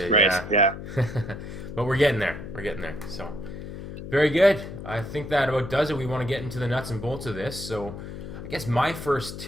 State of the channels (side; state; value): left; noise; hum, 10 dB below the sound